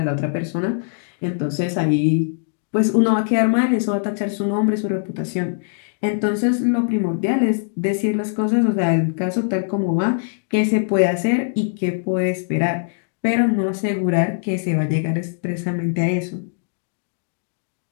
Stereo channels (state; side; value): silent; right; digital silence